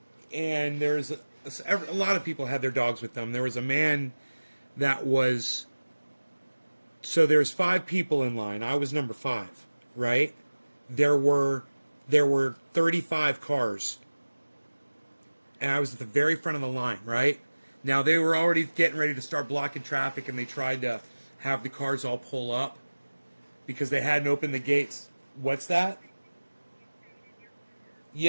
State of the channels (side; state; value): both; inverted; correlation -1.00